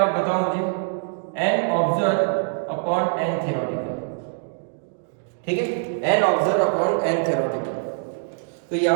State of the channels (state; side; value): silent; left; digital silence